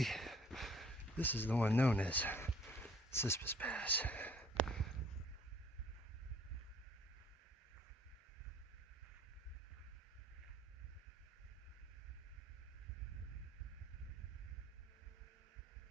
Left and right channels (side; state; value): both; normal; correlation 0.57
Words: this is the one known as Cispus Pass.